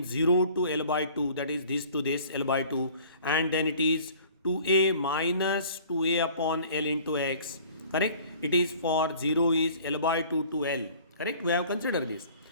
0 to L by 2, that is this to this L by 2, and then it is 2a minus 2a upon L into x. Correct? It is for 0 is L by 2 to L. Correct? We have considered this.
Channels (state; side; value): inverted; both; correlation -0.49